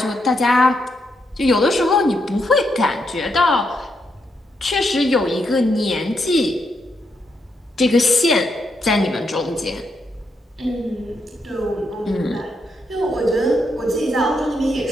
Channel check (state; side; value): normal; both; correlation 0.80